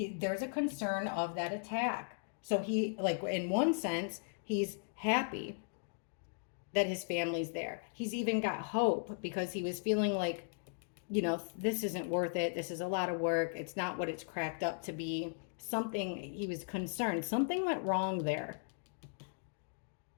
a concern of that attack. So he, like, in one sense, he's happy that his family's there. He's even got hope because he was feeling like, this isn't worth it. This is a lot of work. It's not what it's cracked up to be. He was concerned. Something went wrong there.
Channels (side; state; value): right; silent; digital silence